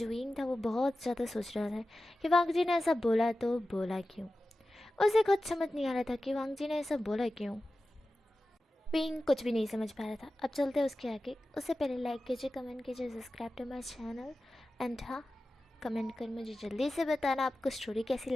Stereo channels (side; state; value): both; normal; correlation 0.94